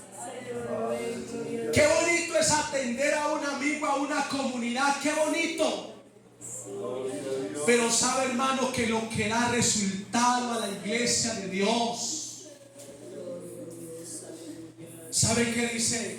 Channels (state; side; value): identical; both; correlation 1.00